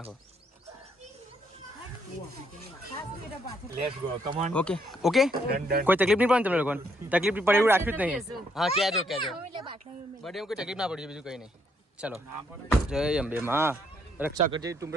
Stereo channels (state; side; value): normal; both; correlation 0.72